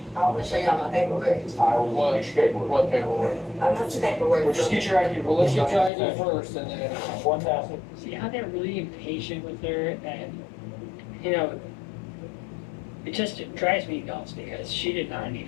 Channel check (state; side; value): drops out; right; at 5.9 s